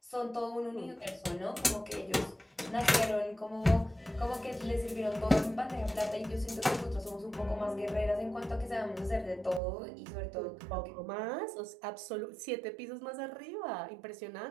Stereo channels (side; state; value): left; drops out; at 9.6 s